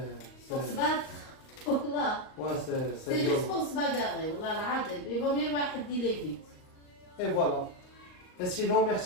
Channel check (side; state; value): right; late; 38 ms